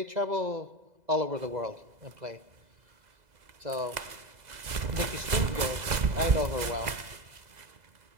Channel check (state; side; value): late; left; 2.0 ms